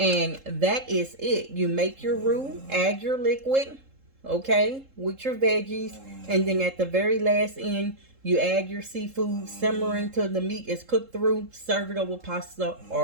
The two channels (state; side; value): late; left; 3.7 ms